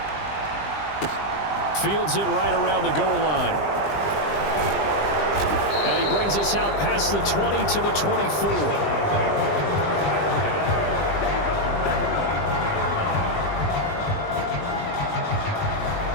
Fields it right around the goal line. And he brings us out past the 20 to the 24.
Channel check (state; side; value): late; right; 20 ms